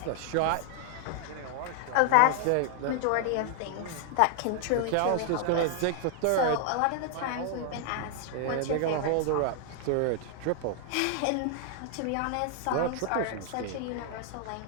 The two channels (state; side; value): different; both; correlation 0.00